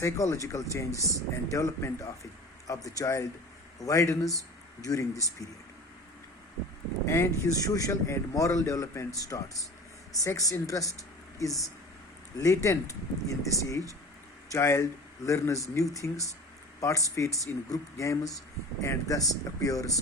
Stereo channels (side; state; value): both; normal; correlation 0.38